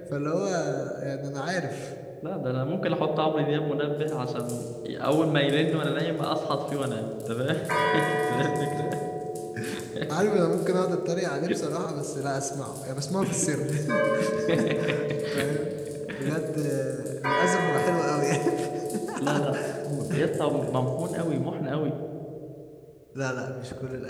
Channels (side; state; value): both; identical; correlation 1.00